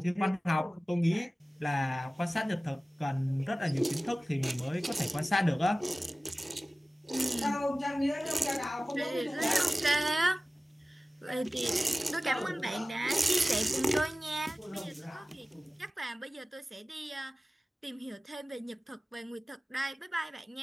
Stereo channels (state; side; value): normal; both; correlation 0.97